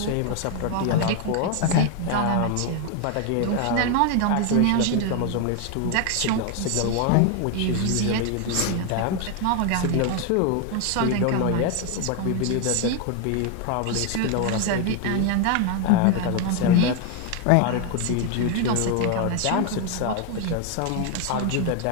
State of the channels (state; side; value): different; both; correlation 0.01